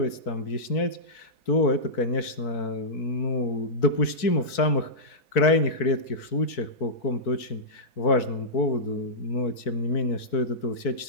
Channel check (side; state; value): right; late; 4.6 ms